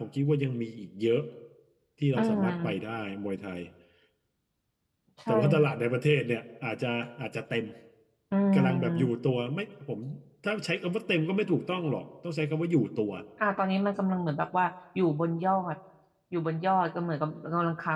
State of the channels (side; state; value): both; identical; correlation 1.00